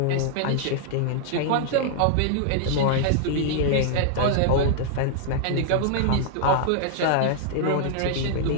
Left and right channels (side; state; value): both; different; correlation -0.01